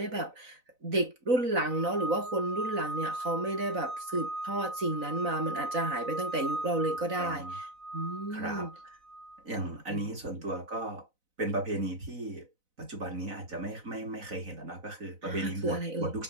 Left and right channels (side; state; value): left; late; 4.0 ms